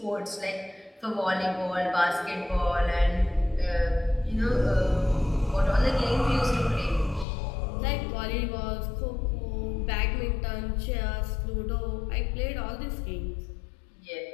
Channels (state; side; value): drops out; right; at 7.2 s